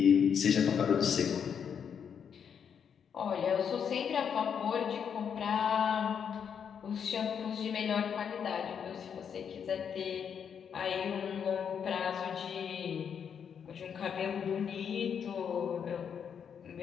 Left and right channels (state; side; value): quieter; right; 7.5 dB